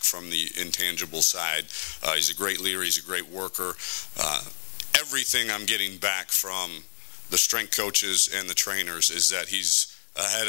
from the intangible side. He's a great leader. He's a great worker. Everything I'm getting back from the strength coaches and the trainers is that he's ahead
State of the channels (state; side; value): silent; right; digital silence